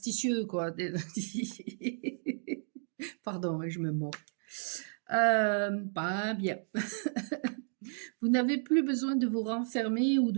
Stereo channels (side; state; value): left; silent; digital silence